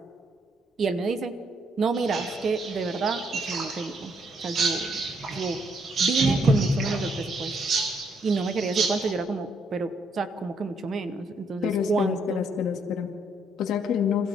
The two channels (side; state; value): both; normal; correlation 0.72